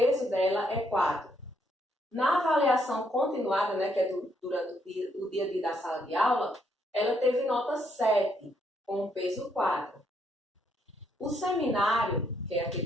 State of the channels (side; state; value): both; normal; correlation 0.73